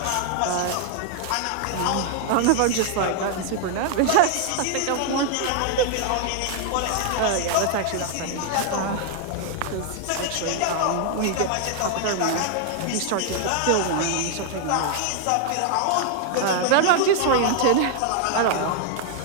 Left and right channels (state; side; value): different; both; correlation 0.00